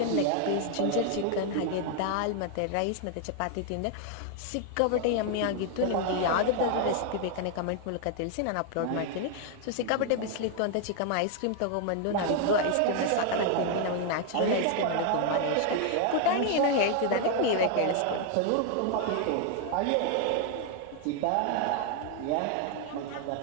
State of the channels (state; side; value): different; both; correlation 0.00